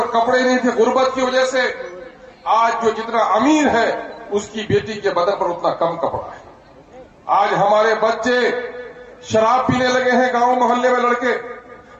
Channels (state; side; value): identical; both; correlation 1.00